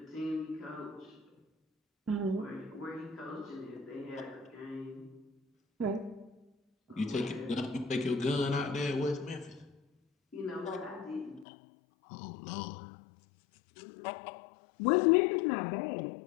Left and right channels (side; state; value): right; drops out; at 11.5 s